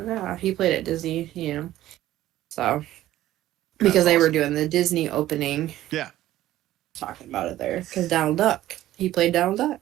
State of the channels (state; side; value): quieter; left; 14.3 dB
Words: he played at Disney, you know. So, because they were doing the Disney opening. Yeah. Talking about it there. Because Donald Duck. He played Donald